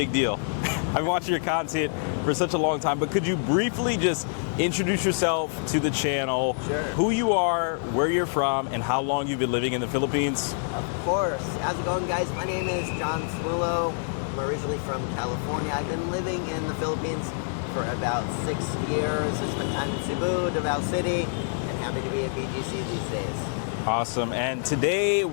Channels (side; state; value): right; silent; digital silence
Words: deal. I've watched your content for such a long time, but could you briefly just introduce yourself to the channel? Sure. Who you are, where you're from, and how long you've been living in the Philippines? Of course. How's it going, guys? My name is John Swillow. I'm originally from California. I've been living in the Philippines for about 6 years. I spent time in Cebu, Davao City, and happy to be in BGC these days. Awesome. And today